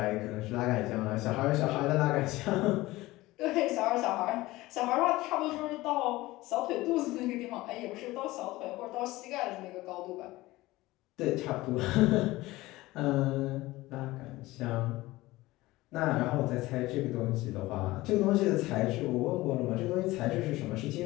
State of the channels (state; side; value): quieter; right; 18.9 dB